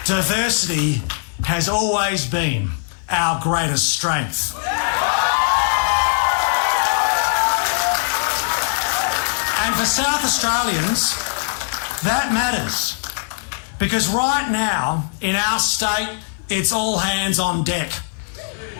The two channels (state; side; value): silent; right; digital silence